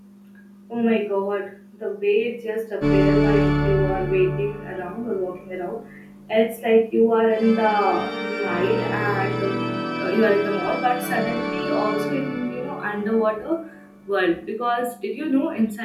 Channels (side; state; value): both; identical; correlation 1.00